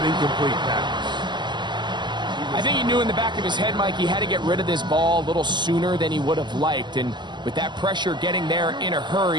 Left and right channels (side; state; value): left; late; 0.22 ms